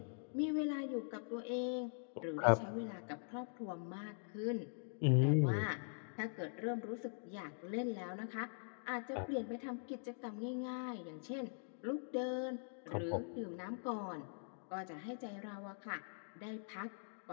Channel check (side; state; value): right; silent; digital silence